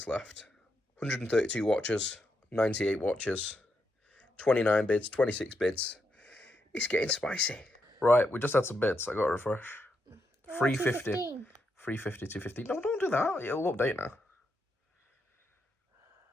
left. 132 watchers, 98 watchers, 29 bids, 26 bids. It's getting spicy. Right, we just had some bids. I got to refresh. 350. 350, 250. No, don't do that. It'll update now.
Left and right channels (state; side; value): normal; both; correlation 0.82